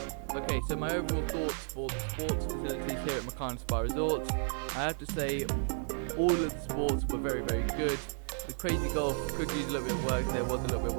Okay, so my overall thoughts for the sports facilities here at Mukarnas Spa Resort. I have to say, all of the sports were very, very good. The crazy golf could use a little bit of work. There was a little bit of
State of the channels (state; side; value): silent; left; 56 dB below the other